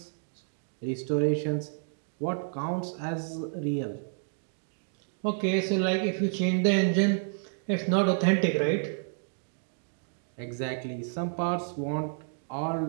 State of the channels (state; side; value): silent; left; digital silence